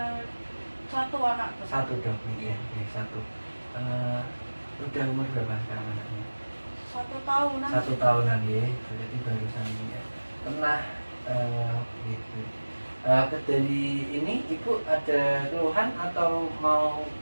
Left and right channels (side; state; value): both; inverted; correlation -1.00